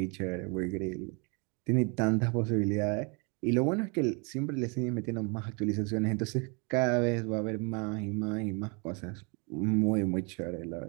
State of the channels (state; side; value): quieter; left; 32.6 dB